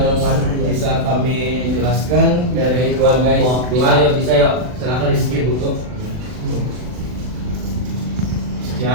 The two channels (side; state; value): left; late; 40 ms